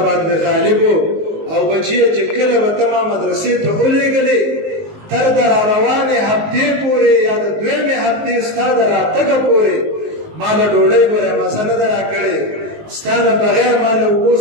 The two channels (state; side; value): late; left; 19 ms